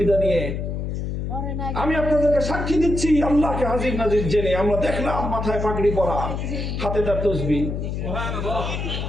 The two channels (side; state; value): left; noise; hum, 3 dB below the sound